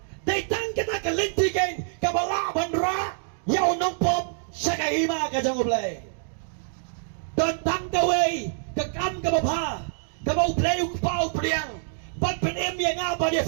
datang kita kelanti kan kebala bandra yau nong pop sakahima ka jong play Don tang gaway, kakam gabapa, gabaw play pau priang, ban penem yang apa dia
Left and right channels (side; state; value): left; silent; digital silence